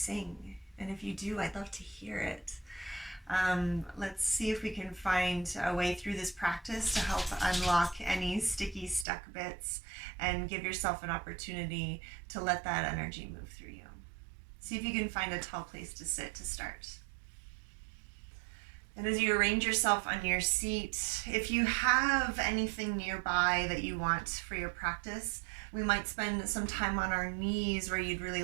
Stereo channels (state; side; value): drops out; left; at 9.1 s